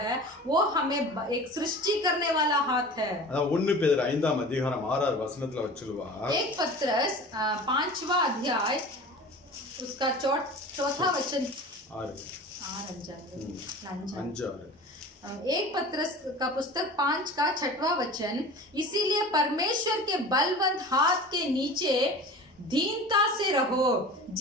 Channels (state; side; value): normal; both; correlation 0.37